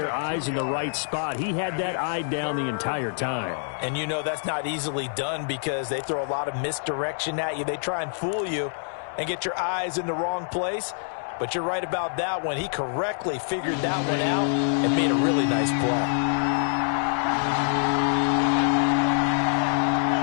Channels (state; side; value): silent; right; 61 dB below the other